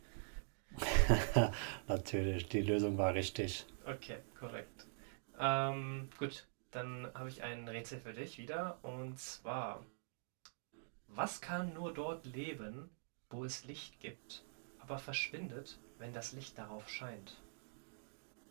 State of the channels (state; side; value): silent; left; digital silence